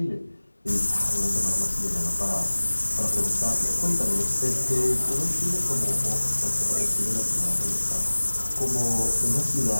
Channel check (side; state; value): both; inverted; correlation -1.00